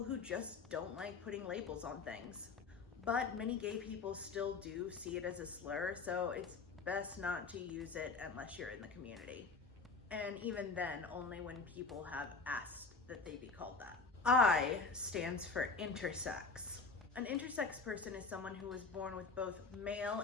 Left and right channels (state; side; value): quieter; right; 4.3 dB